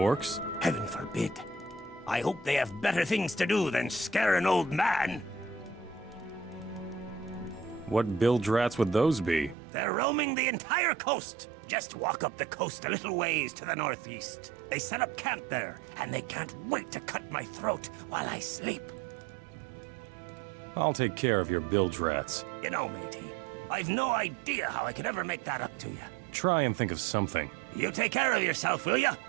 Heaven forbid. I hope they have better things to do than scare an old man. What bilge rats would those be? They're roaming the entire coast. Just walk up the coast a little ways to the northeast. They set up camp there, and they can't wait to cut my throat while I sleep. I'll take care of your bilge rats. You know, matey, I've no idea how I could ever make that up to you. Try and think of something. You take care of yourself, will ya?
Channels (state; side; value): drops out; left; at 9.6 s